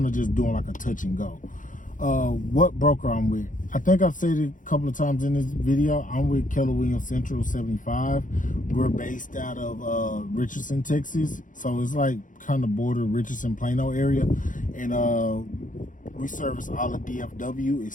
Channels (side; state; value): right; late; 0.38 ms